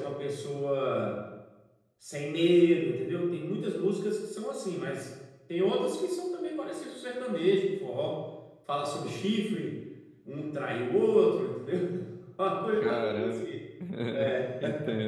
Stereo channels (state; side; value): identical; both; correlation 1.00